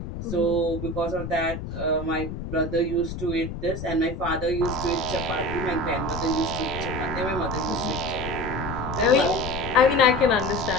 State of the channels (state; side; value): noise; left; rumble, 7 dB below the sound